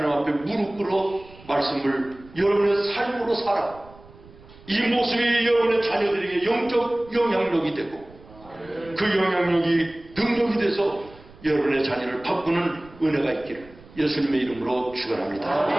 앞에 무릎 꿇어 말씀을 여러분의 삶으로 살아 이 모습이 여러분의 자녀들에게 영적 영향력이 되고 그 영향력이 능력이 돼서 여러분의 자녀를 바꾸는 은혜가 있기를 예수님의 이름으로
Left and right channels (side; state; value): right; noise; rumble, 22 dB below the sound